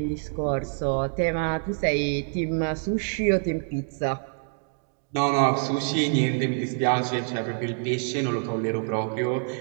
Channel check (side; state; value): left; silent; 61 dB below the other